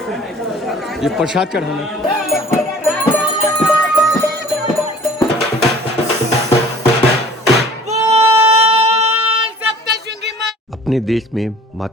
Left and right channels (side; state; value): both; normal; correlation 0.49